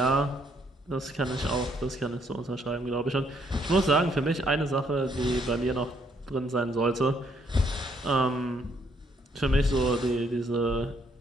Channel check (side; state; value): both; normal; correlation 0.70